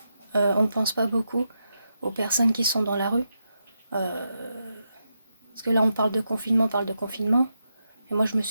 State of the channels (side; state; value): both; inverted; correlation -0.85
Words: On ne pense pas beaucoup aux personnes qui sont dans la rue. Parce que là, on parle de confinement, Et moi, je me